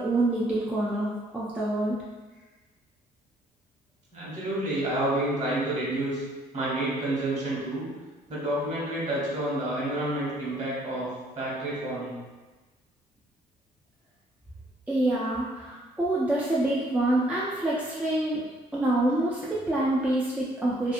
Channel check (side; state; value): both; normal; correlation 0.64